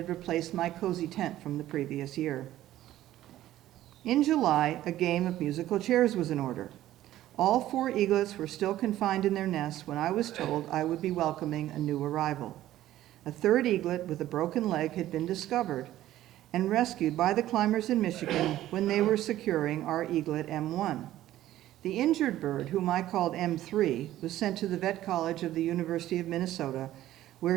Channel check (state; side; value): quieter; left; 13.9 dB